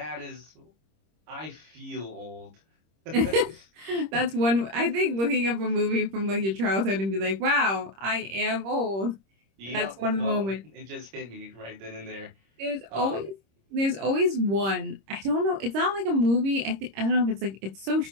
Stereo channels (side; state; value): left; late; 26 ms